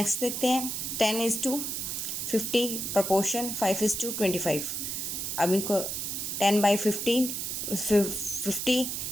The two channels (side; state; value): right; noise; hiss, 3 dB below the sound